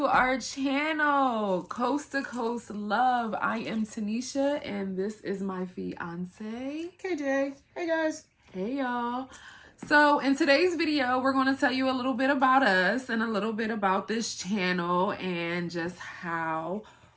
our channel, Coast to Coast Love. I am Tanisha and this is my fiance, KJ. Hey guys. Hey y'all. So in today's video, we're going to tell you a little bit about us and a little bit about this channel and just how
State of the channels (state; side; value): identical; both; correlation 1.00